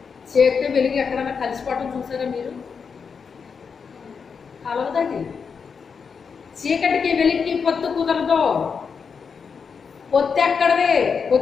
చీకటి వెలుగు ఎక్కడన్నా కలిసిపోవటం చూసారా మీరు కలవదండి చీకటికి వెలికి పొత్తు కుదరదు పొత్తు ఎక్కడదే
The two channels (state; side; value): quieter; right; 5.9 dB